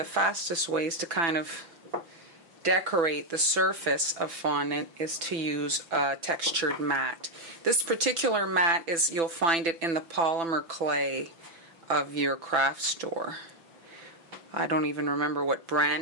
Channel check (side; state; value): left; late; 5.9 ms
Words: fastest ways to kind of decorate the surface of fondant is to use a textured mat. This particular mat is, you'll find it in the polymer clay of your craft store. I don't even remember what